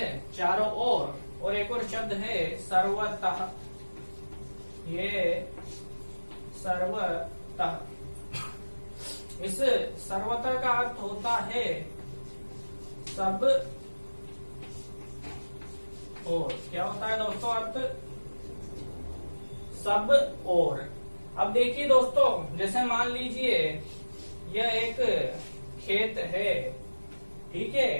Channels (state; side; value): inverted; both; correlation -1.00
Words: चारों ओर, और एक और शब्द है सर्वतः। ये सर्वतः, इस सर्वतः का अर्थ होता है सब ओर। क्या होता है दोस्तों अर्थ? सब ओर। अब देखिए दोस्तों, जैसे मान लीजिए यह एक खेत है, ठीक